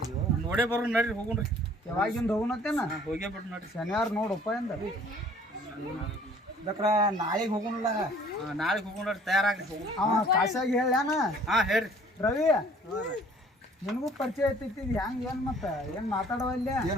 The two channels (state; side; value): normal; both; correlation 0.54